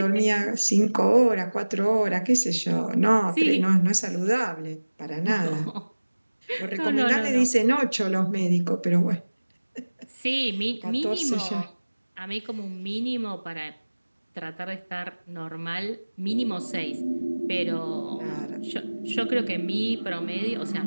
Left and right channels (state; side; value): inverted; both; correlation -1.00